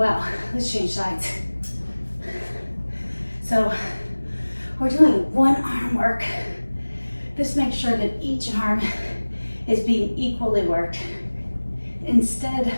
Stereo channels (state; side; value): inverted; both; correlation -1.00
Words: let's change sides. So we're doing 1 arm work. Just make sure that each arm is being equally worked. Instead,